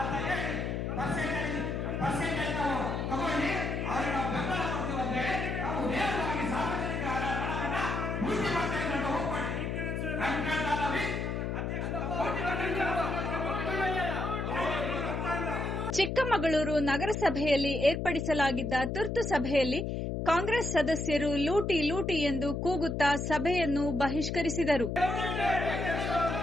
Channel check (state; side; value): noise; left; hum, 2 dB below the sound